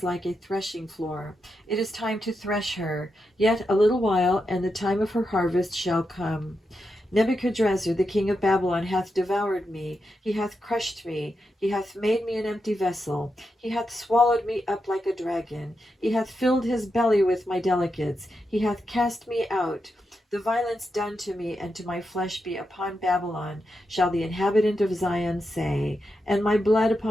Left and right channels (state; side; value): normal; both; correlation 0.86